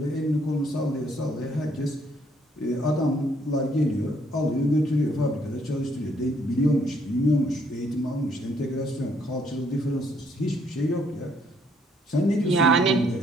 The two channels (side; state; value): both; normal; correlation 0.68